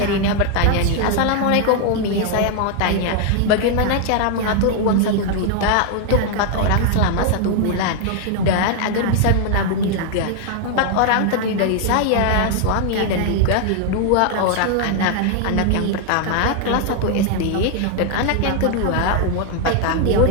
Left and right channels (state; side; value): different; both; correlation 0.00